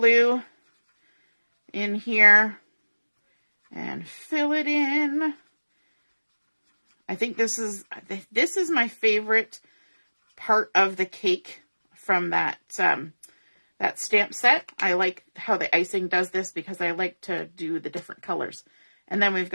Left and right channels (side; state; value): both; inverted; correlation -1.00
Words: in here and fill it in. I think this is my favorite part of the cake from that that stamp set. I like how the icing does this because I like to do the different colors. And then we've